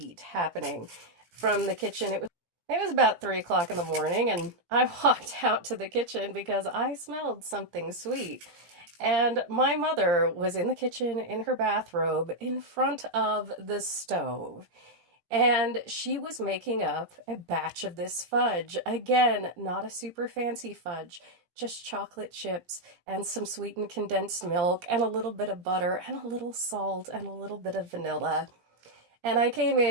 happening from the kitchen. It was about 3 o'clock in the morning, and I walked out to the kitchen because I smelled something sweet. And my mother was in the kitchen in her bathrobe in front of the stove. And she was making up a batch of this fudge. Again, not a super fancy fudge, just chocolate chips and some sweetened condensed milk and a little bit of butter and a little salt and a little bit of vanilla. And I came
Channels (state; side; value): late; left; 17 ms